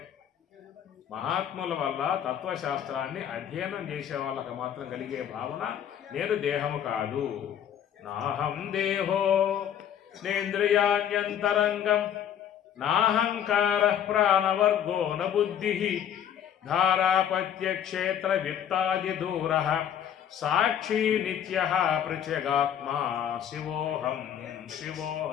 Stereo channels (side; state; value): right; quieter; 9.5 dB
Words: మహాత్ముల వల్ల తత్వశాస్త్రాన్ని అధ్యయనం చేసే వాళ్ళకి మాత్రం కలిగే భావన నేను దేహము కాదు. నాహం దేహో నేంద్రియాణ్యంతరంగం నాహంకార ప్రాణవర్గో న బుద్ధి ధారాపత్యక్షేత్ర విత్తాది దూర సాక్షి నిత్య పృచగాత్మా శివోహం